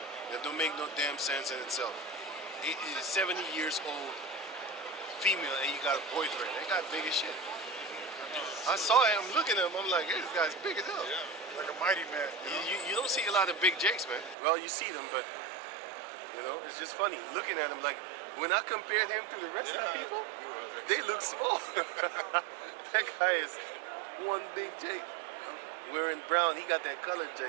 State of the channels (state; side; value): drops out; left; at 14.4 s